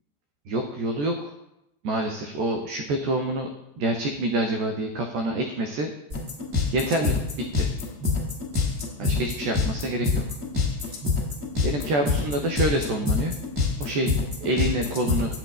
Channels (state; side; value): late; left; 14 ms